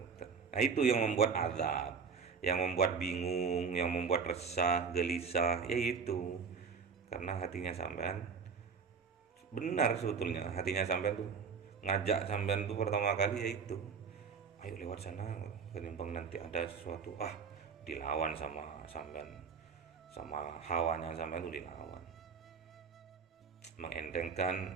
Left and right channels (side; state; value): left; quieter; 5.7 dB